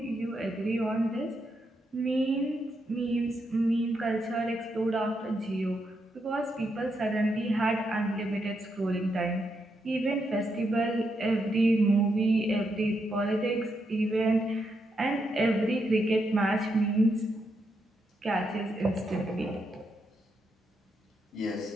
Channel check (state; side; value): normal; both; correlation 0.81